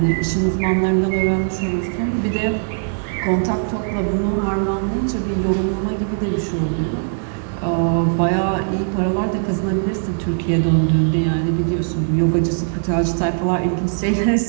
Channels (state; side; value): silent; left; 57 dB below the other